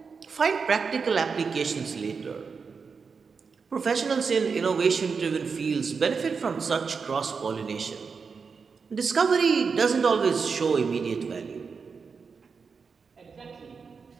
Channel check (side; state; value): left; quieter; 5.3 dB